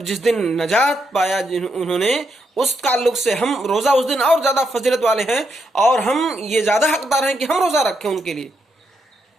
جس دن نجات پایا انہوں نے، اس تعلق سے ہم روزہ اس دن اور زیادہ فضیلت والے ہیں، اور ہم یہ زیادہ حقدار ہیں کہ ہم روزہ رکھیں ان کے لیے،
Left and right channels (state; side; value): normal; both; correlation 0.80